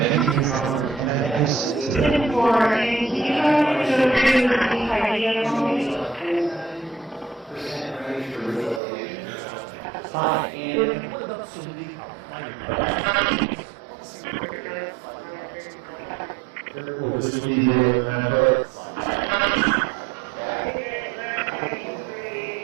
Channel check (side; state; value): left; drops out; at 8.8 s